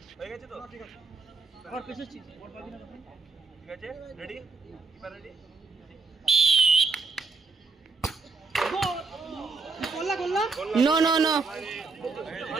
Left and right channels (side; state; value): left; quieter; 4.2 dB